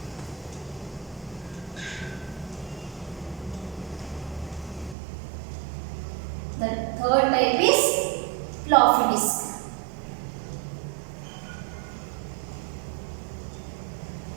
The third type is floppy disk.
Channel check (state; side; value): drops out; left; at 5.0 s